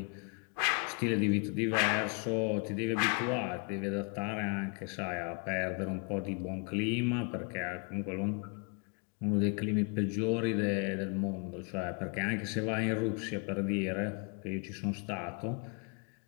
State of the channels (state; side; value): quieter; right; 35.7 dB